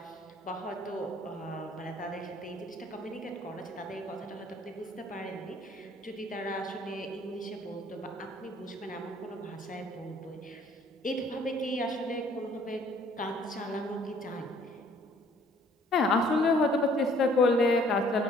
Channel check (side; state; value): both; normal; correlation 0.59